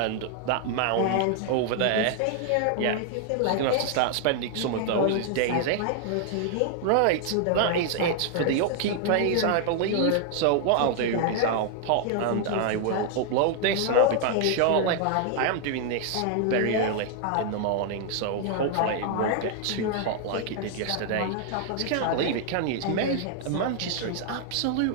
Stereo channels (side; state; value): both; different; correlation 0.00